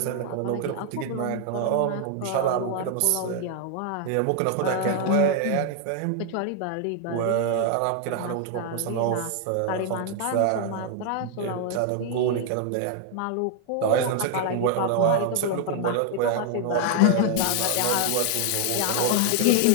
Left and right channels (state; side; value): different; both; correlation 0.00